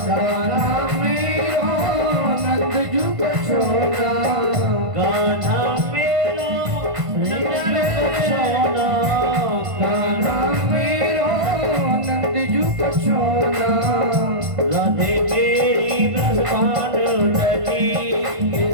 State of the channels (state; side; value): late; left; 1.5 ms